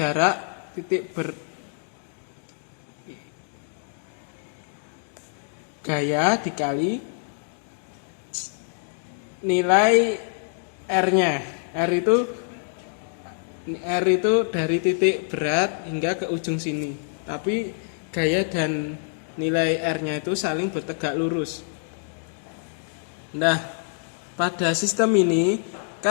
titik gaya dikali nilai R-nya. R itu dari titik berat hingga ke ujung sini. Tapi gaya dan nilai R-nya itu saling bertegak lurus. Nah, pada sistem ini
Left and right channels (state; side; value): silent; right; digital silence